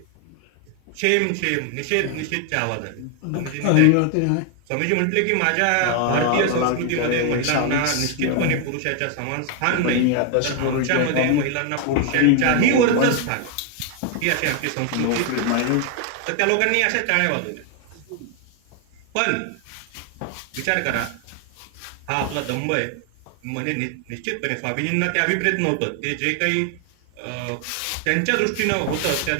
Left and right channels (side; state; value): both; different; correlation 0.01